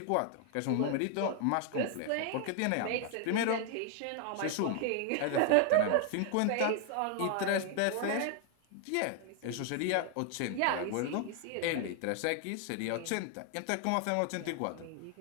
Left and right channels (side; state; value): both; different; correlation 0.00